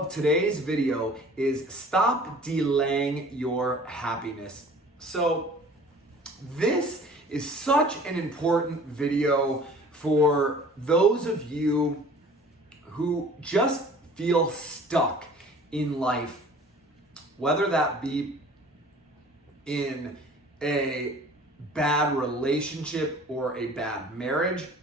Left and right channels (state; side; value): normal; both; correlation 0.48